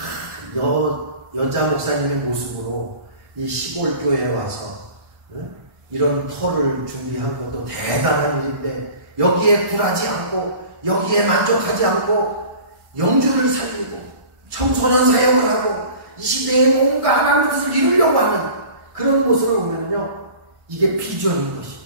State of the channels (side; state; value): left; late; 1.1 ms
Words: 여자 목사님의 모습으로 이 시골 교회에 와서 이런 터를 준비한 것도 대단한 일인데 여기에 굴하지 않고 여기에 만족하지 않고 영주를 살리고 청소년 사역을 하고 이 시대에 뭔가 하나님의 뜻을 이루려고 하는 그런 모습을 보면요 이게 비전인 것입니다.